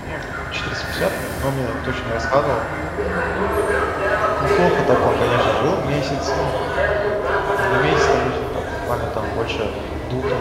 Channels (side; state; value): both; identical; correlation 1.00